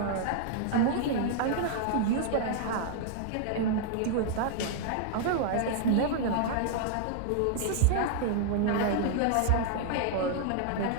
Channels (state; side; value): different; both; correlation -0.01